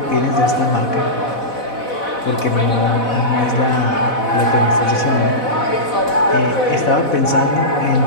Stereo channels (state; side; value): late; right; 4.1 ms